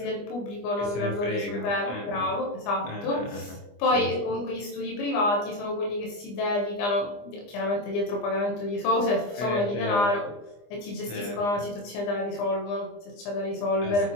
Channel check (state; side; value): late; right; 25 ms